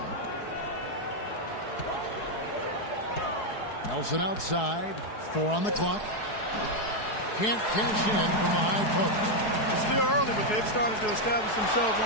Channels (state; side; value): late; right; 4.7 ms